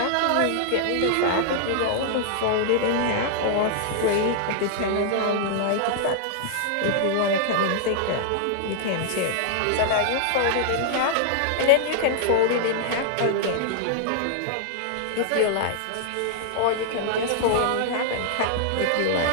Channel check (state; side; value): different; both; correlation -0.01